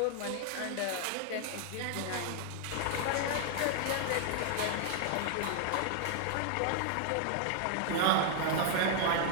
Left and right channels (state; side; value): different; both; correlation 0.00